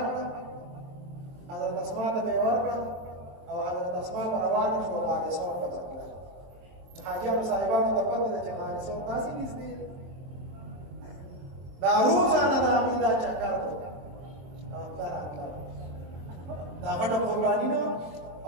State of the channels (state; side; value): late; left; 23 ms